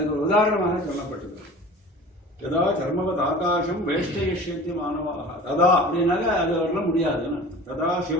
ஒரு உதாரணமாக சொல்லப்பட்டது. யதா கர்மவத் ஆகாசம் வேஷ்டயிஷ்யந்தி மானவாக. ததா அப்படின்னாக்க அது வரலாம் முடியாதுன்னு. ததா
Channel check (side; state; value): both; normal; correlation 0.40